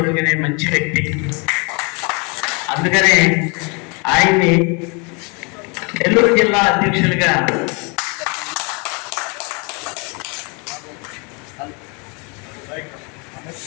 మంచి వ్యక్తి. అందుకనే ఆయన్ని నెల్లూరు జిల్లా అధ్యక్షులుగా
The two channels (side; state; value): right; quieter; 32.4 dB